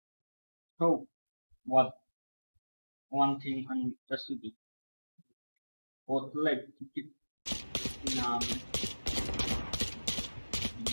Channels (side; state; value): both; inverted; correlation -1.00